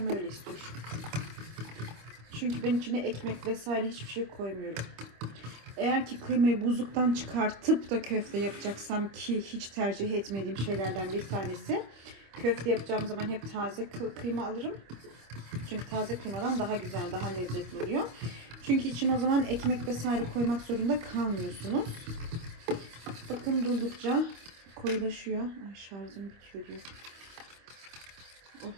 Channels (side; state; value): left; late; 25 ms